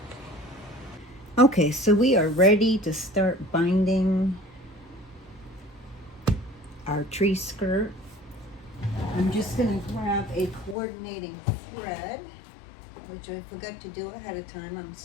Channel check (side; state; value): right; drops out; at 10.8 s